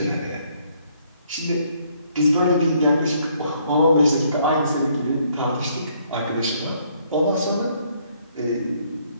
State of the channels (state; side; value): inverted; both; correlation -0.67